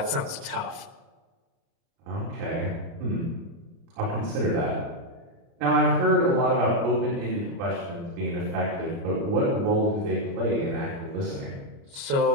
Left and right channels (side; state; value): left; late; 29 ms